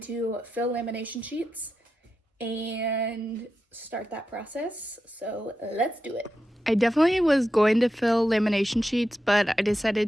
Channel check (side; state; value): both; normal; correlation 0.89